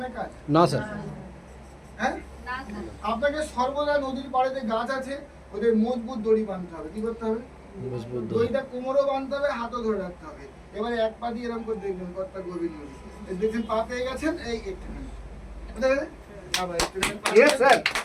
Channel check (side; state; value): both; identical; correlation 1.00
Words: কাজ? না স্যার। হ্যাঁ, আপনাকে সর্বদা নদীর পাড়েতে গাছ আছে, ওদের মজবুত দড়ি বাঁধতে হবে। কি করতে হবে? মজবুত দড়ি। দড়িটা কোমরও বাঁধতে হবে, হাতও ধরে রাখতে হবে। এবারে এক পা দিয়ে এরকম করে দেখবেন কতটা গভীর নদী। এই দেখছেন পা পেয়ে গেছেন, এই একটুখানি বুঝতে গেলে? আবার একটুখানি পা Yes, sir.